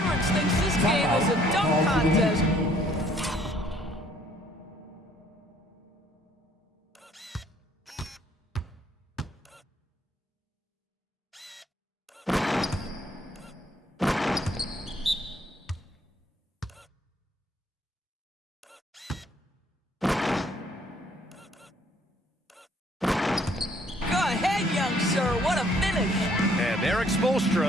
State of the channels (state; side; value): normal; both; correlation 0.63